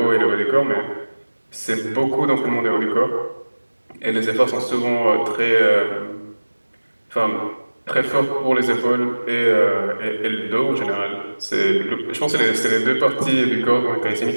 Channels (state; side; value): inverted; both; correlation -1.00